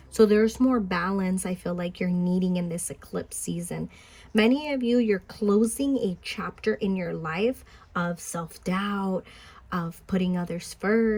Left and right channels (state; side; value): identical; both; correlation 1.00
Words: So there's more balance I feel like you're needing in this eclipse season. Many of you, you're closing a chapter in your life of self-doubt, of putting others